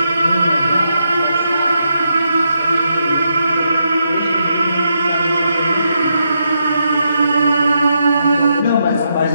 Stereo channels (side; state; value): both; inverted; correlation -0.81